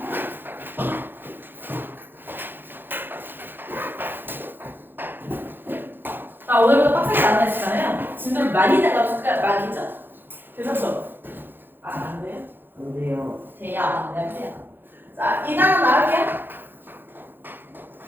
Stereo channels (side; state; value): left; late; 0.098 ms